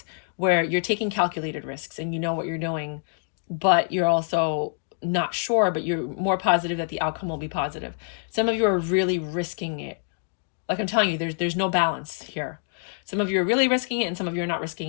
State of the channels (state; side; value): silent; right; 61 dB below the other